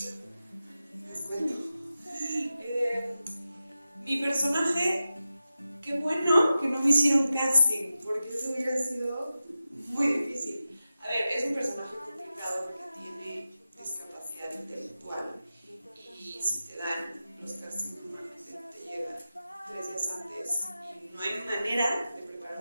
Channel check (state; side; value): inverted; both; correlation -0.93